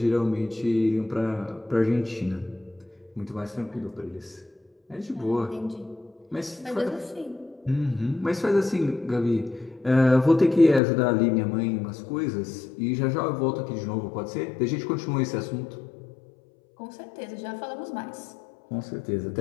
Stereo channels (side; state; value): right; drops out; at 10.8 s